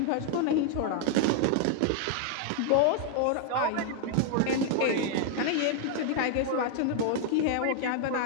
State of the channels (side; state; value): both; different; correlation 0.00